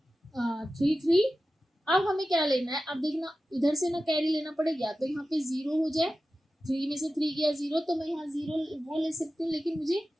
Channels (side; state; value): both; normal; correlation 0.94